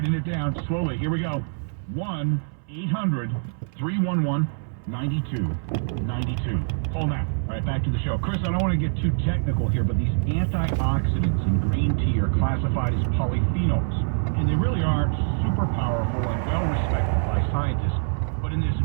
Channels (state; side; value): silent; left; 62 dB below the other